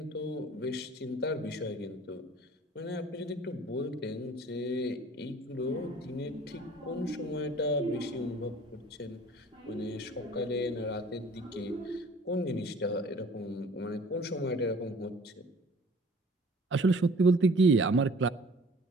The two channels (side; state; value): both; normal; correlation 0.50